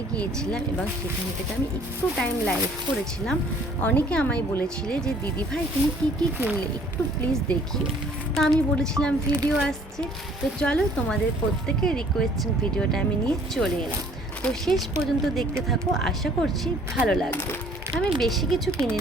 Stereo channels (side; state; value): both; normal; correlation 0.57